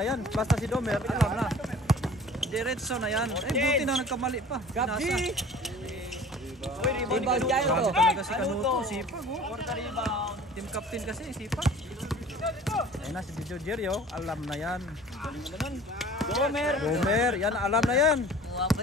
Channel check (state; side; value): normal; both; correlation 0.45